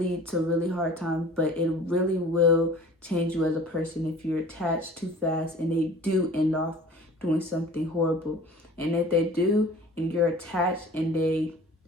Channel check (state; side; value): normal; both; correlation 0.45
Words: to really hard times, but it really will change you as a person if you're attached too fast and they do end off doing something horrible. And if they do, and you're attached, and they